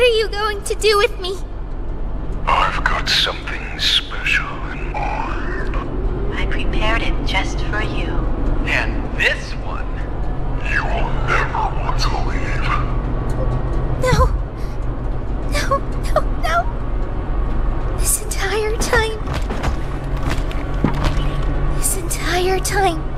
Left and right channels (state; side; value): identical; both; correlation 1.00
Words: are you going to do with me? I've got something special in mind. I prepared it just for you. And this one, You will never want to leave. No. This entire time,